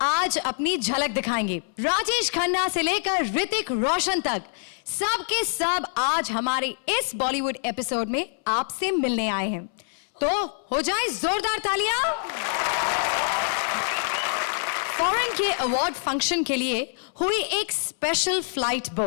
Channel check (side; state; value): right; silent; 61 dB below the other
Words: आज अपनी झलक दिखाएंगे। राजेश खन्ना से लेकर ऋतिक रोशन तक सब के सब आज हमारे इस बॉलीवुड एपिसोड में आपसे मिलने आए हैं, तो हो जाए जोरदार तालियां। फॉरेन के अवार्ड फंक्शन के लिए हुई एक स्पेशल फ्लाइट